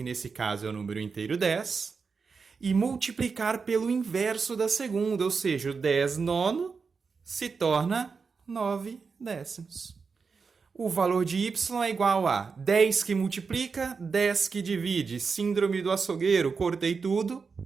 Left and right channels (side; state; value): left; quieter; 5.1 dB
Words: nesse caso é o número inteiro 10, e multiplicar pelo inverso da segunda, ou seja, o 10 nono se torna 9 décimos. O valor de y é igual a 10 que multiplica, 10 que divide. Síndrome do açougueiro, cortei tudo.